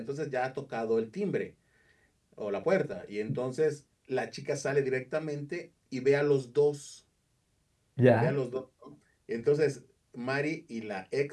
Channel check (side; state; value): both; identical; correlation 1.00